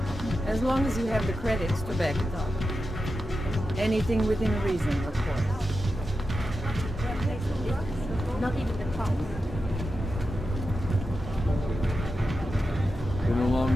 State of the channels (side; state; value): both; normal; correlation 0.90